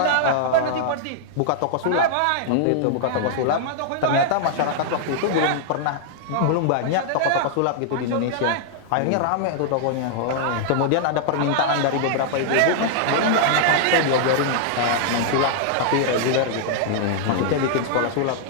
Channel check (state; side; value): different; both; correlation -0.01